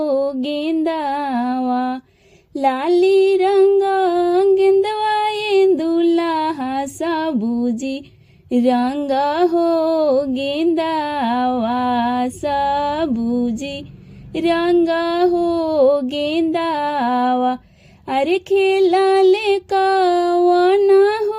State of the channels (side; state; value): both; identical; correlation 1.00